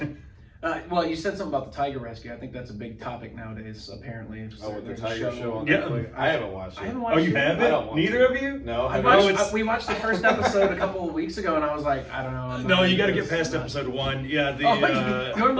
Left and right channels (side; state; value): both; identical; correlation 1.00